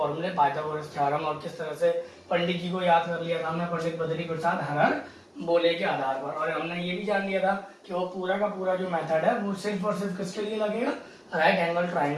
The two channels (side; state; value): both; identical; correlation 1.00